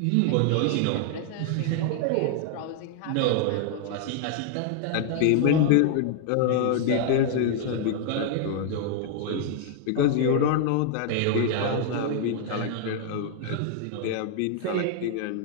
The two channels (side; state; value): both; different; correlation 0.00